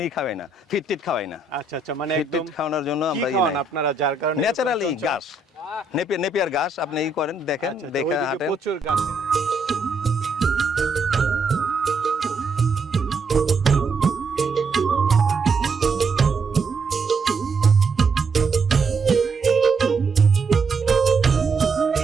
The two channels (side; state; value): left; quieter; 3.7 dB